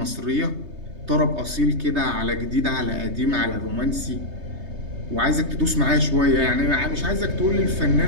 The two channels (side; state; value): left; late; 3.3 ms